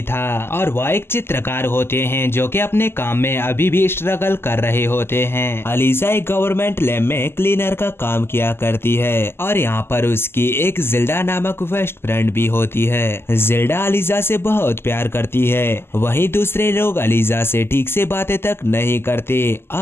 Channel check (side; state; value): right; late; 0.12 ms